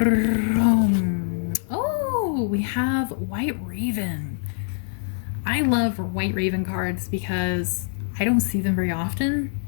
Oh, we have White Raven. I love White Raven cards because I don't see them very often.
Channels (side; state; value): right; silent; digital silence